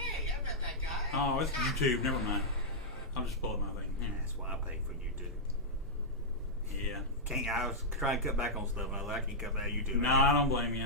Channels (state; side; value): normal; both; correlation -0.08